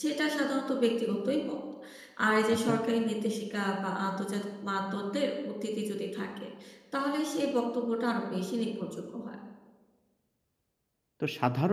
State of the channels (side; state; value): both; identical; correlation 1.00